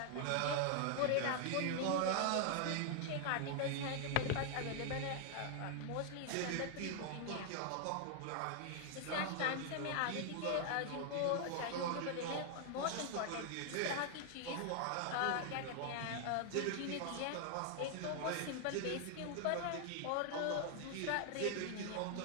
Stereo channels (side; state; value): both; different; correlation 0.00